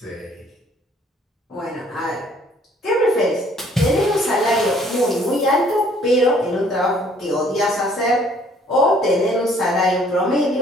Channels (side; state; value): both; normal; correlation 0.60